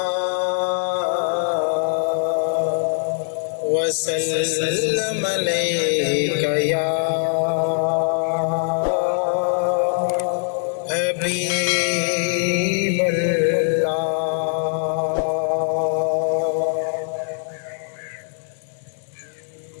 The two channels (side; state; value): right; silent; 64 dB below the other